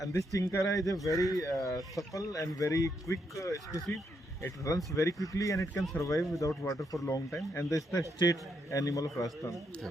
this chinkara is a very supple and very quick species. It runs very quickly and it can survive without water for a long time. And this is the state animal of Rajasthan.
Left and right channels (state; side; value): normal; both; correlation 0.78